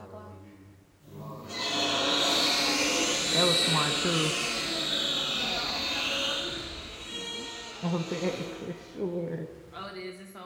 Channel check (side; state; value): both; identical; correlation 1.00